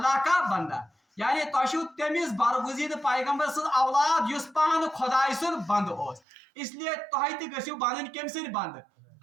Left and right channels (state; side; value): drops out; left; at 6.2 s